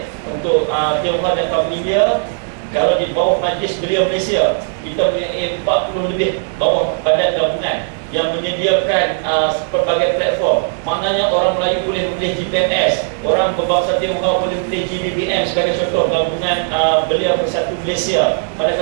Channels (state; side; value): silent; left; 68 dB below the other